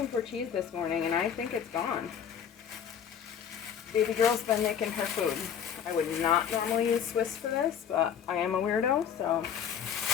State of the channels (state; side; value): quieter; right; 8.2 dB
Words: for cheese this morning, and I think it's gone. Baby girl's been making her food. I would not normally use Swiss for this, but I am a weirdo, so